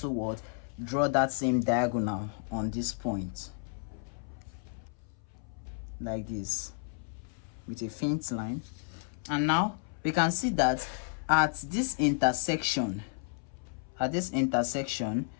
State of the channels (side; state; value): right; silent; 56 dB below the other